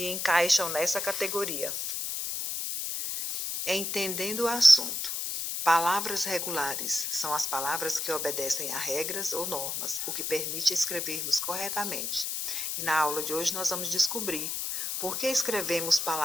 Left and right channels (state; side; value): noise; left; hiss, 2 dB below the sound